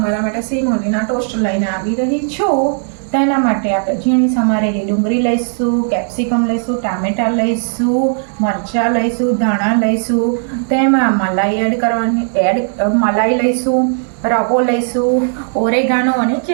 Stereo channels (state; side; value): silent; left; digital silence